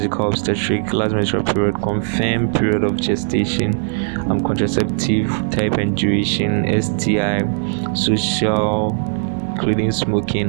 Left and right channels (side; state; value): left; silent; 67 dB below the other